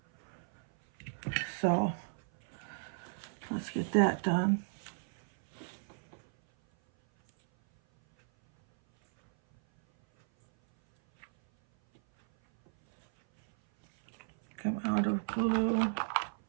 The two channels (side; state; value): left; silent; 55 dB below the other